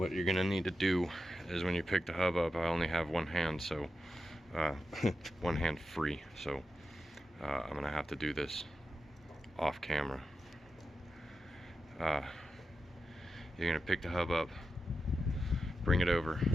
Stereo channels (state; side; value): normal; both; correlation 0.90